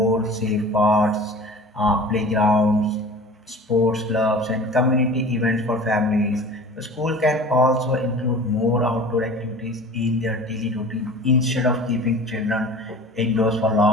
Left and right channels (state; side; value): normal; both; correlation 0.40